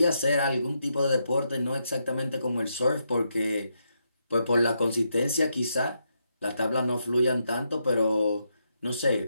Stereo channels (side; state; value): both; inverted; correlation -0.81